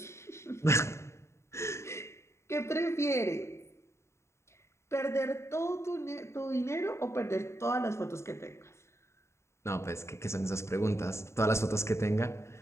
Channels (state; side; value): late; right; 0.13 ms